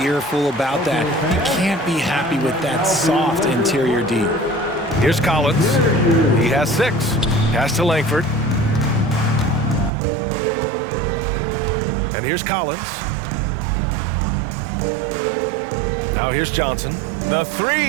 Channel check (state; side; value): drops out; left; at 9.9 s